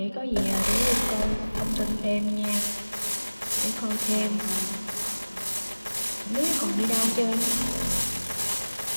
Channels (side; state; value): both; inverted; correlation -1.00